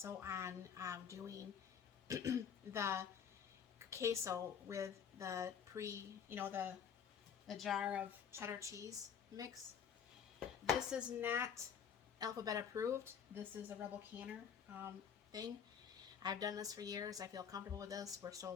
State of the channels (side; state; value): right; quieter; 7.6 dB